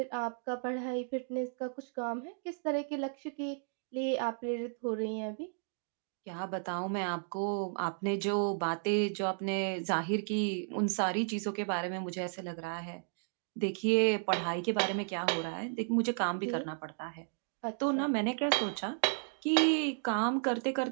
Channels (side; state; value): left; silent; digital silence